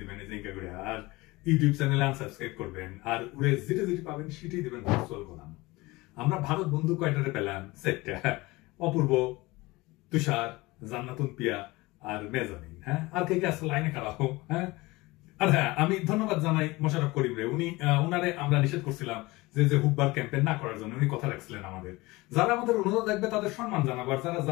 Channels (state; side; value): quieter; right; 21.6 dB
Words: দিবেন জিঙ্কা করে, আর ইউটিউব চ্যানেলে আনসাবস্ক্রাইব করবেন, আর ওরে যেটা যেটি পাবেন সেটাই দিবেন ভার্চুয়াল গোলাম। আমরা ভারত বন্ধু কয়টারে পেলাম? সেটটা অপূর্ব, তুষার, জান্নাতুন পিয়া আর মেজামিন। হ্যাঁ, আর কে কে আসলে লাইনে খারাপ। হ্যাঁ, আর হ্যাঁ, আমি ধন্যবাদ জানাই মোশাররফ করিম রে। উনারে আমরা নিষেধ করছিলাম যে হুব্বার ক্যাম্পেইন না করার জন্য। উনি কথা রাখছিলেন আমাদের। যারা আমাদের অনুরোধ দেখবে তাদের সম্মান জানাবো, আর যারা